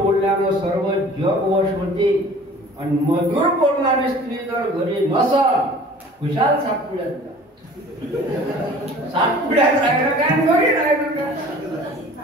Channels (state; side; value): normal; both; correlation 0.47